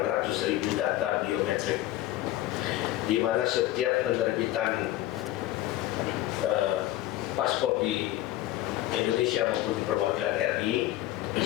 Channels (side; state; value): right; quieter; 15.1 dB